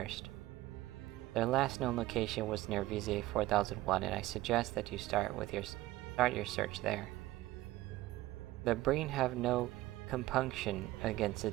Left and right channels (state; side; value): quieter; left; 17.2 dB